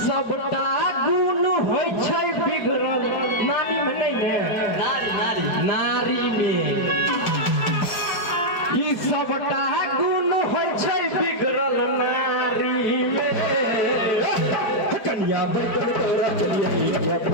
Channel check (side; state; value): right; late; 4.5 ms